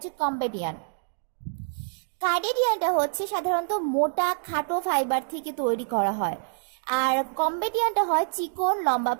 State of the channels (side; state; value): left; silent; digital silence